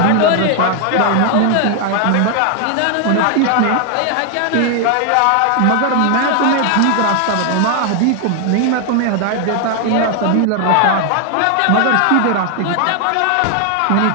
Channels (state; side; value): different; both; correlation 0.00